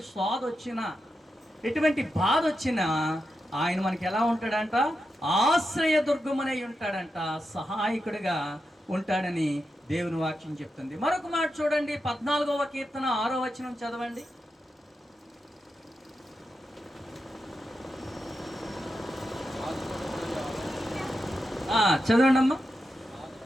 స్వాద వచ్చినా, ఎటువంటి బాధ వచ్చినా ఆయన మనకి ఎలా ఉంటాడంట? ఆశ్రయ దుర్గమనై ఉంటాడంట, సహాయకుడిగా ఉంటాడని దేవుని వాక్యం చెప్తుంది. మరొక మాట చూడండి, 14వ కీర్తన 6వ వచనం చదవండి. చదవండి అమ్మా.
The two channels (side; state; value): both; normal; correlation 0.88